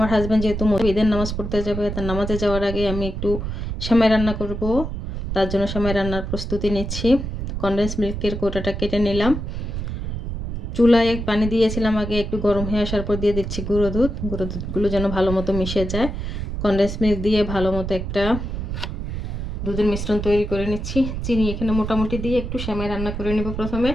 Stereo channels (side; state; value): right; noise; rumble, 5 dB below the sound